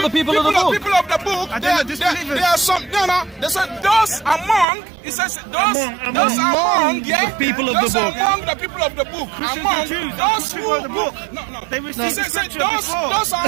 the people of the book? People of the book. There are some. No. They said those among. It says those among. Yeah. The people of the book. Among the people of the book. Among those who of the book. No. They received the scripture those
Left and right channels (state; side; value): drops out; left; at 4.7 s